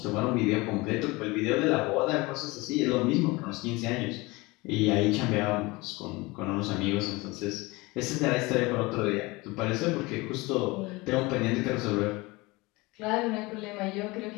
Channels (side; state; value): right; quieter; 23.2 dB